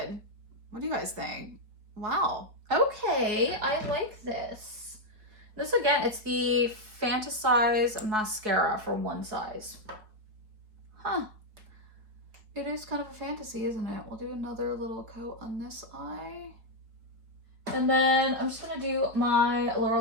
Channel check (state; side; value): late; left; 4.7 ms